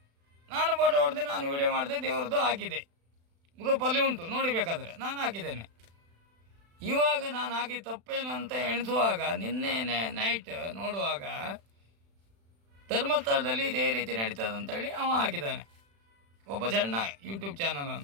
ನಾನು ಫೋಟೋ ಹೊಡೆದೆ, ನಾನು ವೀಡಿಯೋ ಮಾಡಿದೆ, ದೇವರದ್ದು ಹಾಕಿದೆ, ಗ್ರೂಪಲ್ಲಿ ಉಂಟು, ನೋಡಿ ಬೇಕಾದರೆ ನಾನು ಹಾಕಿದ್ದೇನೆ. ಇವಾಗ ನಾನು ಹಾಕಿ ತಪ್ಪೇನು ಅಂತ ಎಣಿಸುವಾಗ ನಿನ್ನೆ ನೈಟ್ ನೋಡುವಾಗ ಧರ್ಮಸ್ಥಳದಲ್ಲಿ ಇದೇ ರೀತಿ ನಡೀತದಂತೇಳಿ ಅವ ಹಾಕಿದ್ದಾನೆ, ಒಬ್ಬ ಸಣ್ಣ ಯೂಟ್ಯೂಬ್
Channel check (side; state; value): left; late; 36 ms